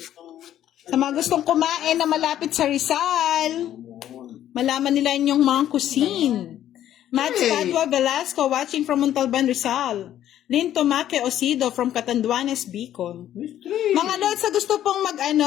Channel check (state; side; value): quieter; right; 11.6 dB